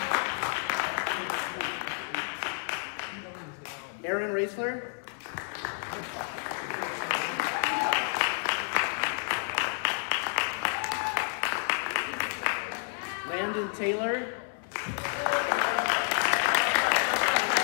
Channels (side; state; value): right; silent; 58 dB below the other